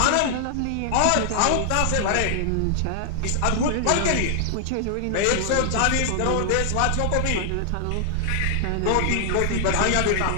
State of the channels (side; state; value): both; different; correlation 0.00